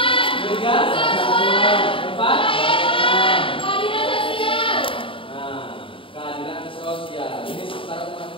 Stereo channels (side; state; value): right; late; 0.25 ms